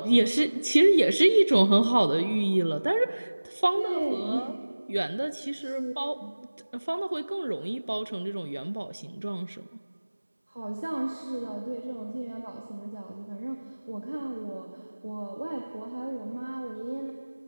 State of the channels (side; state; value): both; inverted; correlation -1.00